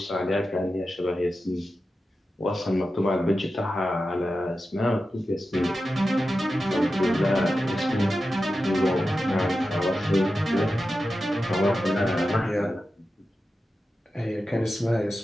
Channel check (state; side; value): normal; both; correlation 0.92